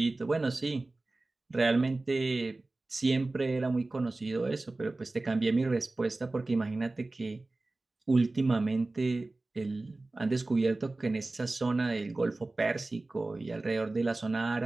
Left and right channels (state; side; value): quieter; left; 3.1 dB